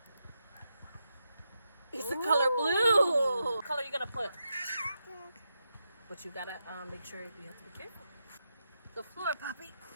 It's the color blue. What color you gonna put? But you gotta make sure you have to be careful. The floor, Poppy.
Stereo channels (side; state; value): both; inverted; correlation -0.86